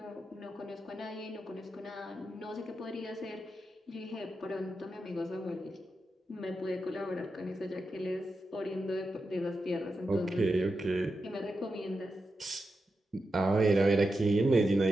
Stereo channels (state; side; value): normal; both; correlation 0.89